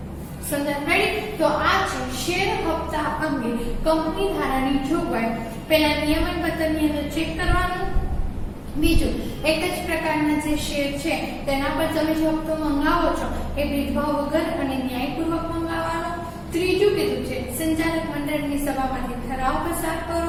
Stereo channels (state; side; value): identical; both; correlation 1.00